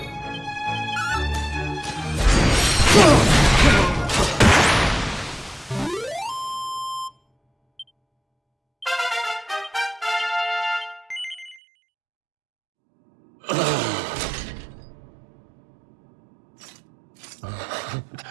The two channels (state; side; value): drops out; left; at 11.6 s